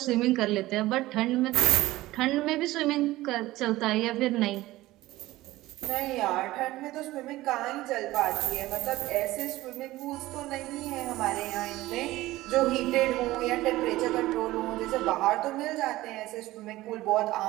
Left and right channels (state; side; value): quieter; left; 17.5 dB